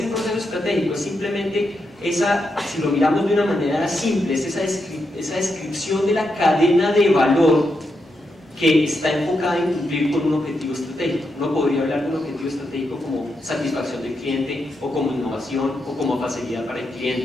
proceso estratégico? Es simplemente si lo miramos de una manera simple, es esa descripción de la cadena de valor que está enfocada en cumplir con un objetivo estratégico. Uno podría hablar de un objetivo estratégico como satisfacción del cliente, o como innovación, o como facilidad para el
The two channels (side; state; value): both; normal; correlation 0.84